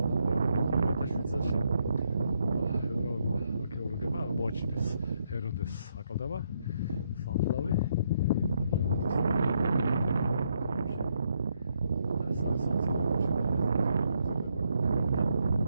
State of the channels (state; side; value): inverted; both; correlation -0.76